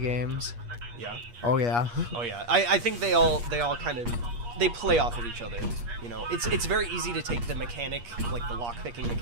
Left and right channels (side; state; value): left; late; 8.4 ms